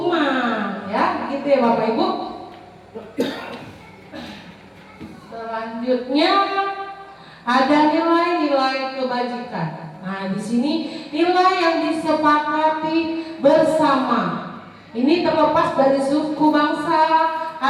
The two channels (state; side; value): identical; both; correlation 1.00